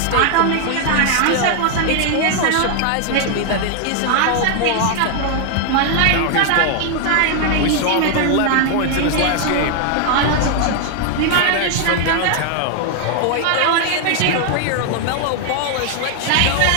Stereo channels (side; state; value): both; different; correlation 0.00